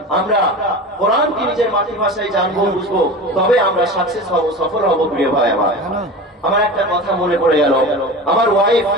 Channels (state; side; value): normal; both; correlation 0.32